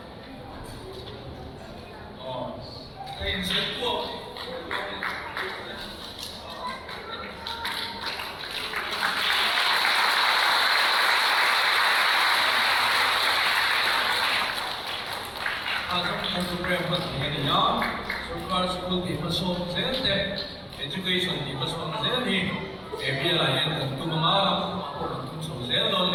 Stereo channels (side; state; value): both; identical; correlation 1.00